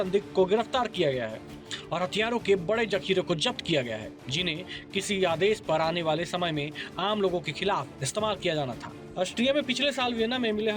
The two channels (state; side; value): identical; both; correlation 1.00